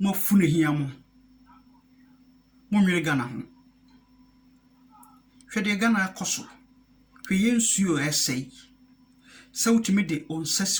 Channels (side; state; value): both; identical; correlation 1.00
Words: mo fune hiamo mo nwere Ghana ho hwede Ghana akoso hwe yensuo essay se utimi de